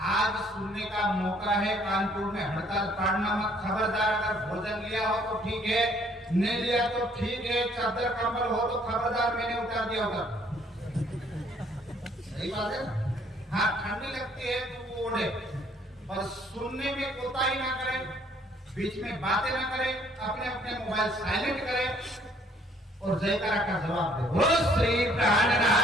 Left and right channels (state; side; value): normal; both; correlation 0.63